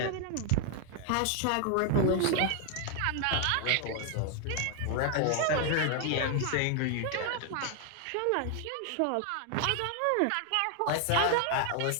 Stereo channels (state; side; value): different; both; correlation 0.00